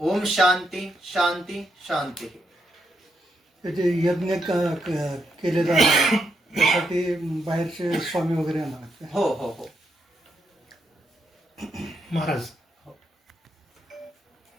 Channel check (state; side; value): normal; both; correlation 0.80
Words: ओम शांती शांती शांती. त्याचे यज्ञ केले जाणार त्यासाठी बाहेरचे स्वामी वगैरे येणार. हो हो हो महाराज,